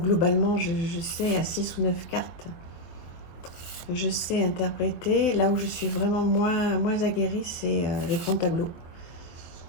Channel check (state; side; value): late; right; 24 ms